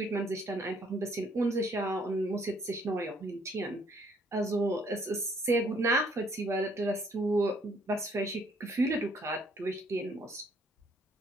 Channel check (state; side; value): normal; both; correlation 0.65